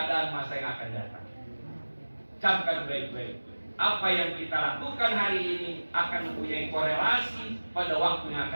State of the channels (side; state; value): both; inverted; correlation -1.00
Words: masa yang akan datang. Camkan baik-baik. Apa yang kita lakukan hari ini akan mempunyai korelasi pada waktu yang